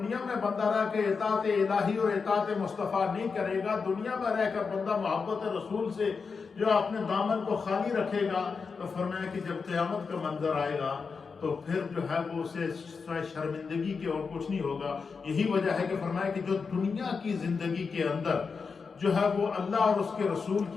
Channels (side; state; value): right; quieter; 5.2 dB